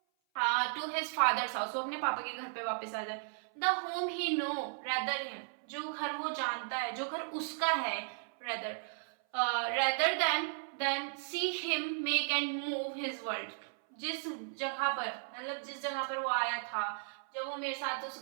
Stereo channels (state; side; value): silent; left; 54 dB below the other